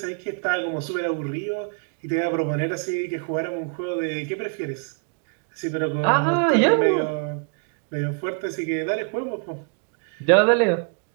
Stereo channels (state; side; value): quieter; left; 39.7 dB